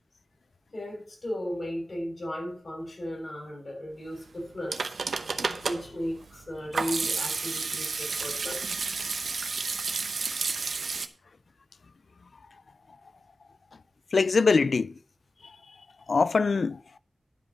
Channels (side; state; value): both; normal; correlation 0.91